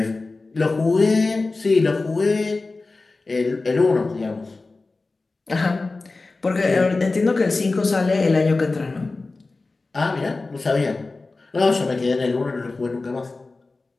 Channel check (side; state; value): right; quieter; 3.5 dB